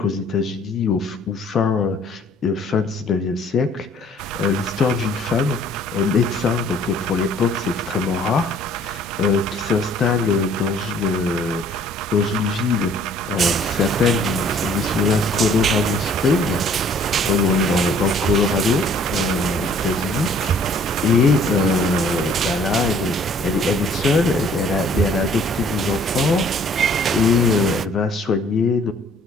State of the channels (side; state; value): both; normal; correlation 0.57